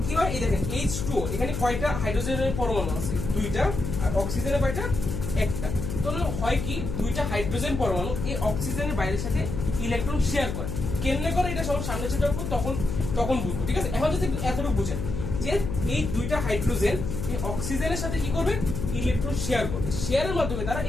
কি হয়, এই দেখেন H2O, এখানে কয়টা হাইড্রোজেনের পরমাণু আছে 2টা, আর অক্সিজেনের কয়টা 1টা। তাহলে হয় কি 2টা হাইড্রোজেন পরমাণু এই অক্সিজেনের বাইরের সাথে ইলেকট্রন শেয়ার করে। কেমনে করে এটা সব সামনে সেটা তখন বুঝবো, ঠিক আছে। এখন যদি এতটুকু বুঝেন যে এই 2টা হাইড্রোজেন এই অক্সিজেনের সাথে কি করবে ইলেকট্রন শেয়ার করবে, শেয়ারের মাধ্যমে তারা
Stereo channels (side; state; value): left; noise; hum, 4 dB below the sound